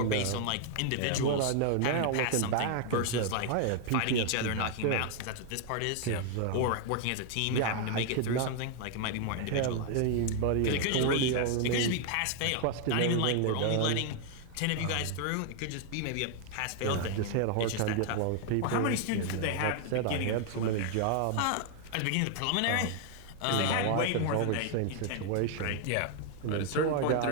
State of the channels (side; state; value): both; different; correlation 0.00